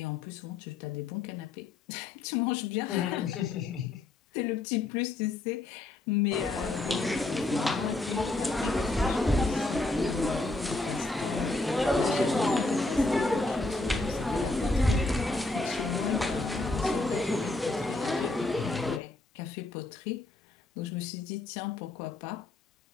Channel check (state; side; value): quieter; right; 3.1 dB